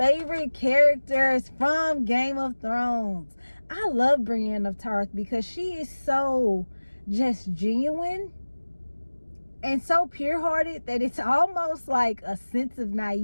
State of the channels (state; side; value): inverted; both; correlation -1.00